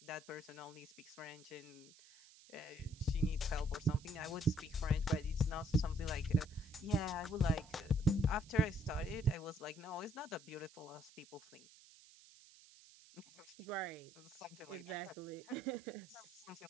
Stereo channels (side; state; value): right; noise; hiss, 22 dB below the sound